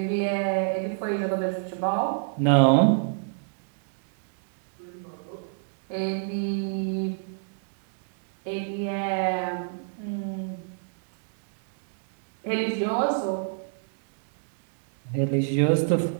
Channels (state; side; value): silent; left; digital silence